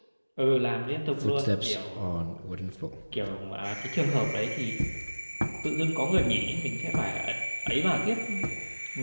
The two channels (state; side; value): inverted; both; correlation -1.00